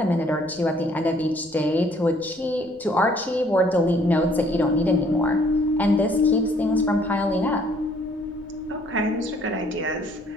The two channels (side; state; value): left; noise; rumble, 28 dB below the sound